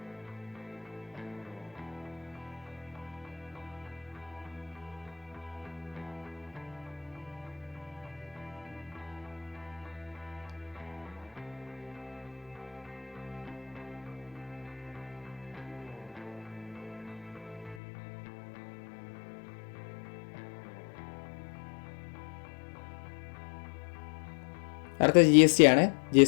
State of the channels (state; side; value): drops out; right; at 17.8 s